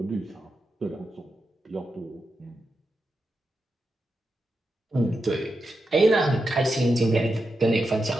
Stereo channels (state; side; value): normal; both; correlation 0.87